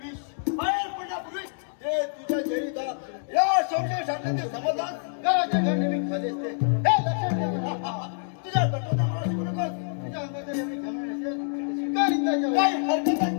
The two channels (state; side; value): silent; right; 60 dB below the other